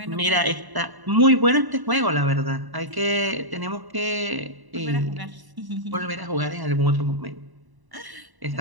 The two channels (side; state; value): left; late; 1.0 ms